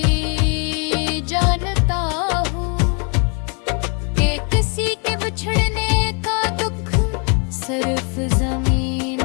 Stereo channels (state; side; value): quieter; right; 35.7 dB